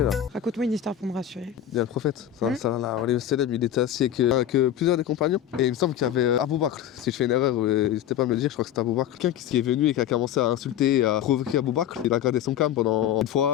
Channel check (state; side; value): quieter; right; 10.8 dB